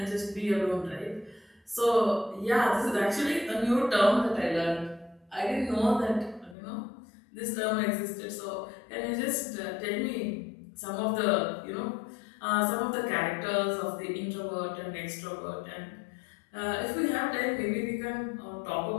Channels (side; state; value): right; drops out; at 6.6 s